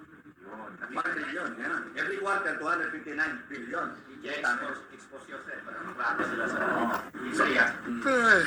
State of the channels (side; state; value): both; identical; correlation 1.00